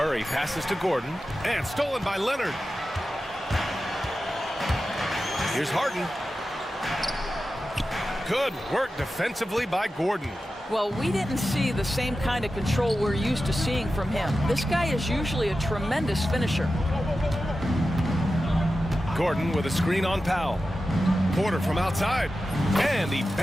passes to Gordon. And stolen by Leonard. Here's Harden. Good work defensively by Gordon. Well, we didn't see the same kind of control we're used to seeing from him. This guy is usually a tremendous finisher. Gordon with a screen on Powell. Porter from outside. And he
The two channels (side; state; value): both; normal; correlation 0.93